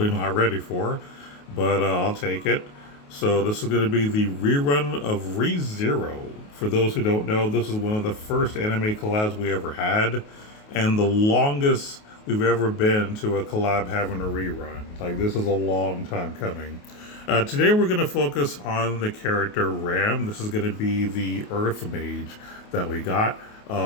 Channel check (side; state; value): right; late; 28 ms